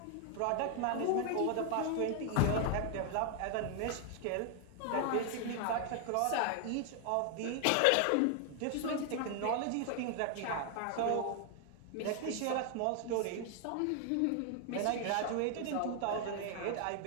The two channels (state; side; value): different; both; correlation 0.00